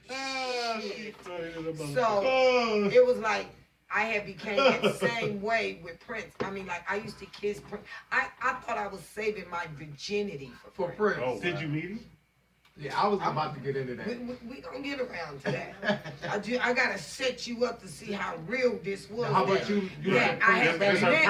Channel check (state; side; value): identical; both; correlation 1.00